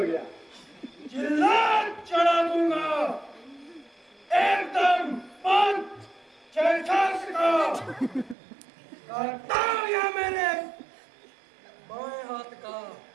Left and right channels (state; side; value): drops out; left; at 8.3 s